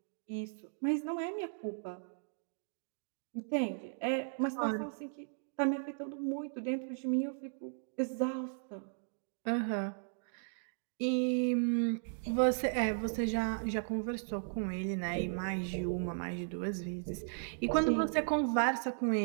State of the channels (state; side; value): silent; left; digital silence